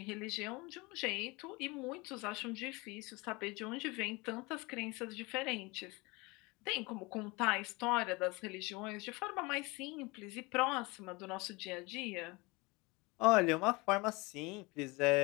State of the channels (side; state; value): right; quieter; 25.3 dB